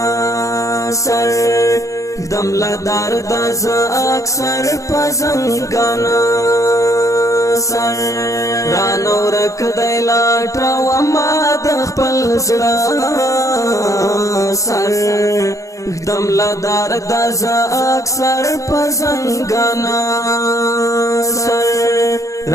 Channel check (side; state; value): right; late; 0.15 ms